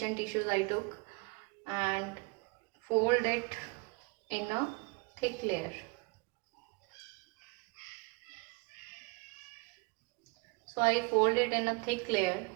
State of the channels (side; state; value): left; quieter; 29.2 dB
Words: tissues I took, and fold it in a thick layer. So I fold it in a thick layer,